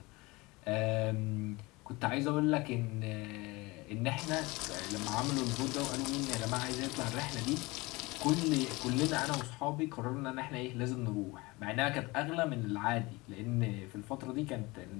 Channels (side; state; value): right; quieter; 23.2 dB